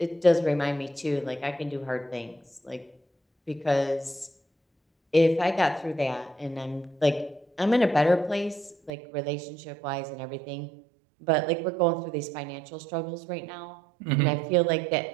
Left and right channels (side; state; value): left; drops out; at 8.9 s